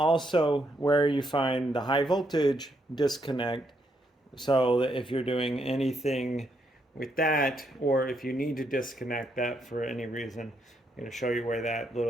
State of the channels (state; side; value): normal; both; correlation 0.76